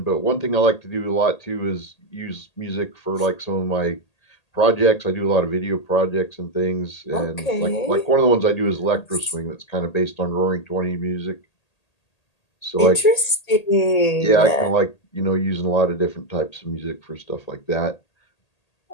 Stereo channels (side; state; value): right; late; 1.8 ms